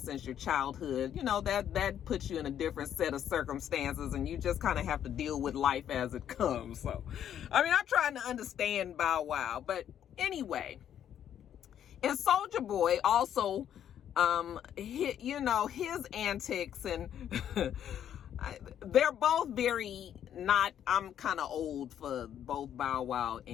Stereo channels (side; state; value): right; quieter; 9.9 dB